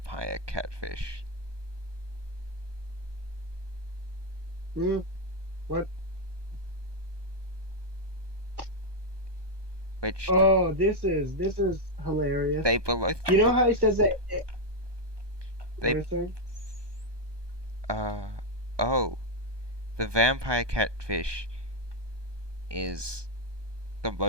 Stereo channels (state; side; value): late; left; 1.2 ms